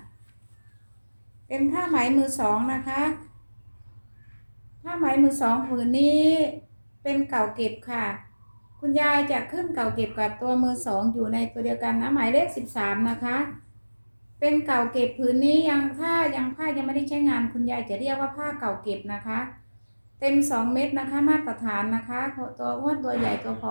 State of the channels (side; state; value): both; inverted; correlation -1.00